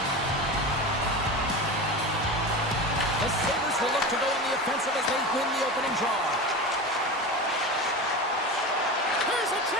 The Sabres will look to go on the offensive as they win the opening draw. Here's a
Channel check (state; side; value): normal; both; correlation 0.27